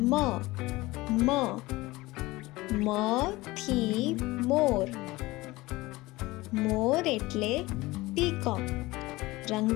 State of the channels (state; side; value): quieter; right; 20.2 dB